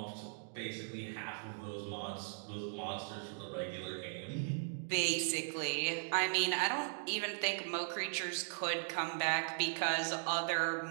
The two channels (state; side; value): silent; left; digital silence